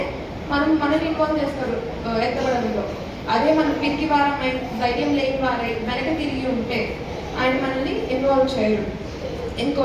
మనల్ని ఇన్వాల్వ్ చేస్తారు ఎత్తబడంలో. అదే మనం పిరికి వారమై ధైర్యం లేని వారై వెనక తిరిగి ఉంటే ఆయన మనల్ని ఇన్వాల్వ్ చేయరు.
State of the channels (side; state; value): both; identical; correlation 1.00